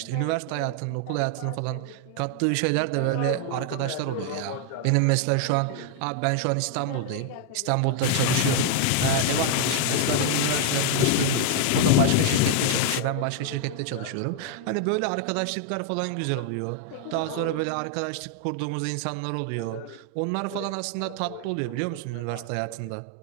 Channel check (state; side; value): different; both; correlation 0.00